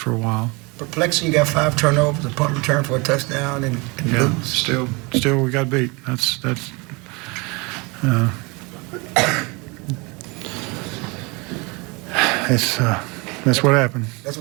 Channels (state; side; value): quieter; left; 27.7 dB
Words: a while. Perplexing, you got 5 turnovers, a punt return for a touchdown, and lose. Still we got beat. That's what happened. That's